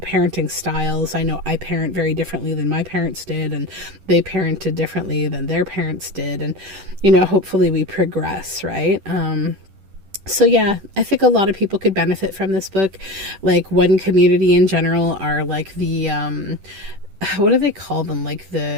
styles. I know I parent very differently than my parents did, and they parented differently than their parents did. And, you know, hopefully we progress, right? So yeah, I think a lot of people could benefit from this book. Like one community in general are like the, what do they call them? Like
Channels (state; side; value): late; left; 10 ms